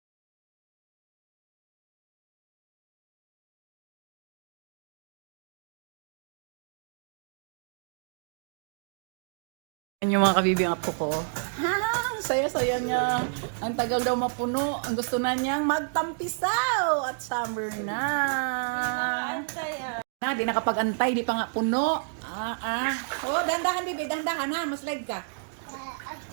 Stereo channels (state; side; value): silent; left; digital silence